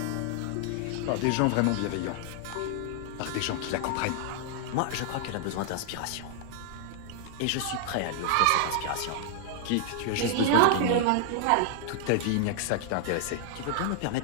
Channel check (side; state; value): both; different; correlation -0.01